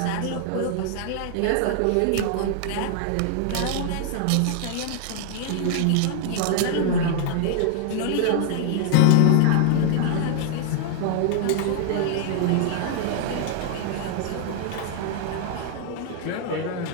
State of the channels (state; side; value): different; both; correlation 0.00